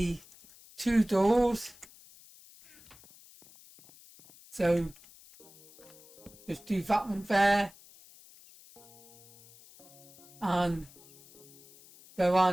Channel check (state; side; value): noise; left; hiss, 23 dB below the sound